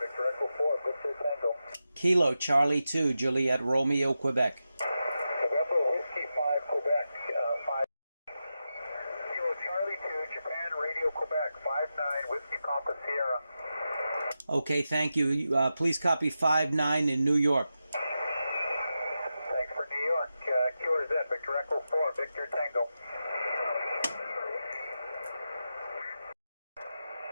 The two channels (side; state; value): both; inverted; correlation -0.90